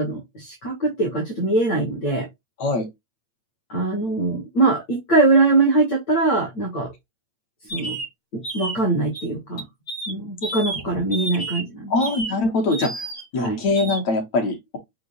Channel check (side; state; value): right; late; 8.8 ms